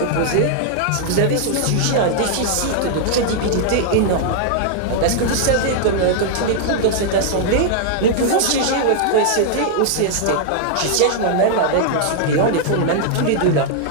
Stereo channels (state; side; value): different; both; correlation -0.01